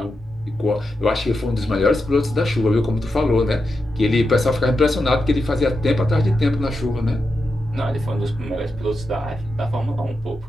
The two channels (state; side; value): normal; both; correlation 0.87